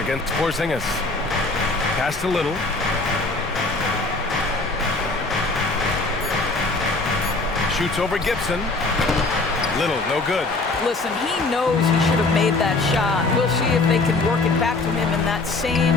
against Porzingis. Pass to Little. Shoots over Gibson. Little, no good. Listen, he knows he should have made that shot. We'll see if they can work it back to him in that same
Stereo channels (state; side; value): quieter; right; 3.4 dB